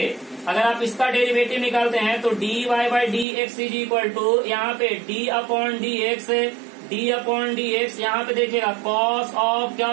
अगर आप इसका डेरिवेटिव निकालते हैं तो D Y by D x is equal to यहाँ पे d upon d x, d upon d x, यहाँ पे देखिएगा कॉस ऑफ क्या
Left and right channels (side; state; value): left; drops out; at 3.2 s